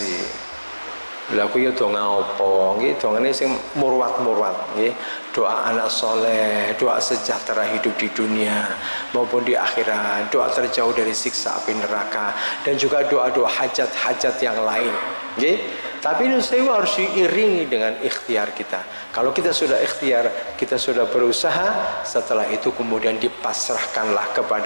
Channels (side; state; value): both; inverted; correlation -1.00